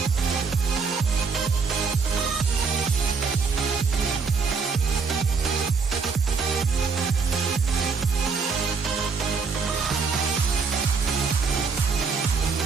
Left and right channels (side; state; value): left; quieter; 5.1 dB